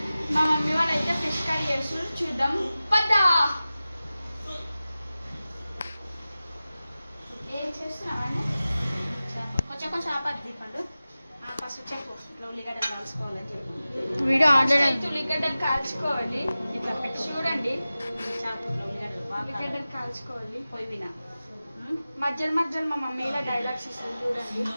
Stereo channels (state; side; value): inverted; both; correlation -0.96